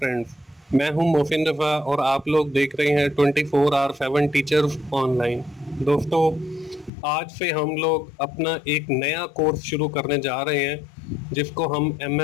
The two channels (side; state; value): right; drops out; at 6.9 s